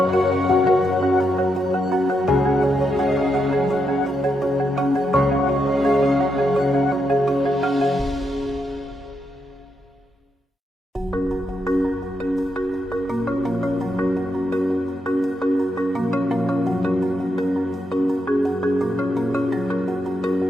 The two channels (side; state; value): both; normal; correlation 0.82